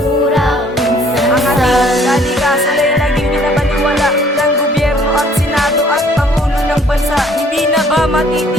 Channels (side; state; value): both; normal; correlation 0.59